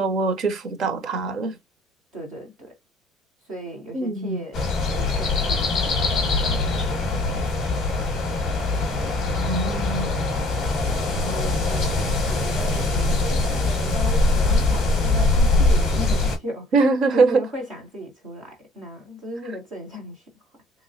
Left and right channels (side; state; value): both; normal; correlation 0.55